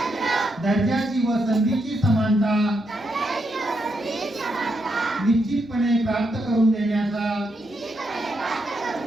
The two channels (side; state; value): both; normal; correlation 0.81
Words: दर्जाची व संधीची समानता निश्चितपणे प्राप्त करून देण्याचा